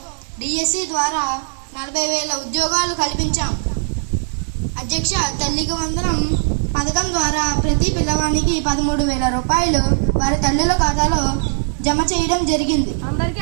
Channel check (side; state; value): left; silent; digital silence